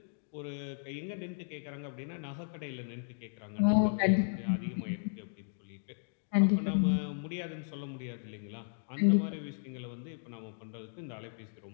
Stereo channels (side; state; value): right; silent; digital silence